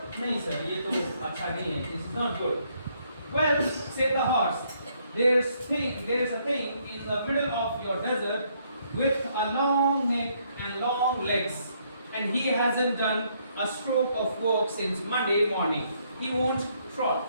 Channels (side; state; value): both; inverted; correlation -0.70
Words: नहीं सर, ये तो अच्छा नहीं है. This is not good. Well, said the horse, there's a thing in the middle of your desert with a long neck and long legs, and he hasn't done a stroke of work since Monday morning. He won't